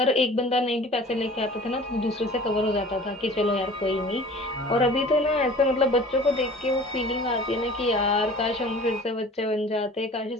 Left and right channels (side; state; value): both; normal; correlation 0.45